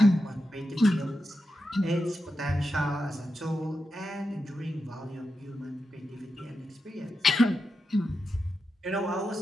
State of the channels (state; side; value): normal; both; correlation 0.88